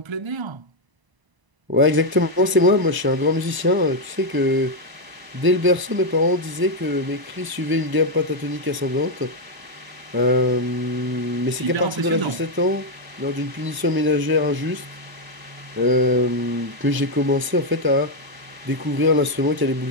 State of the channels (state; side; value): late; left; 1.0 ms